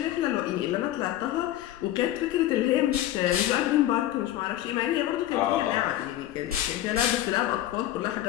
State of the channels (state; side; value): quieter; right; 13.6 dB